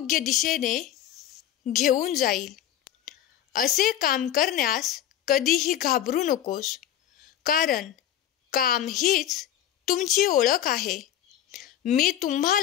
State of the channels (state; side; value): quieter; right; 11.2 dB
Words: दिशेने घेऊन जाईल असे काम करण्यास कधीही घाबरू नकोस. कारण काम हीच तुमची ओळख आहे. मी